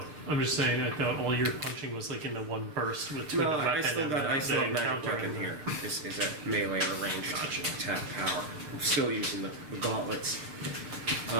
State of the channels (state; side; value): late; left; 6.6 ms